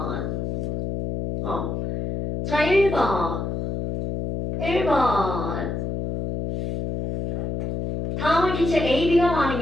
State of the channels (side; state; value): left; noise; hum, 3 dB below the sound